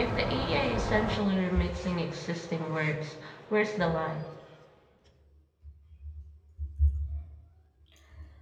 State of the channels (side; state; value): both; identical; correlation 1.00